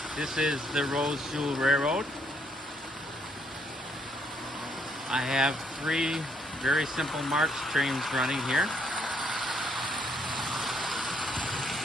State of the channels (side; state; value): both; normal; correlation 0.70